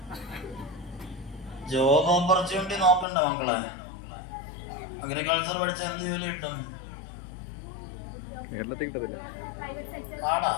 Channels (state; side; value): drops out; right; at 3.1 s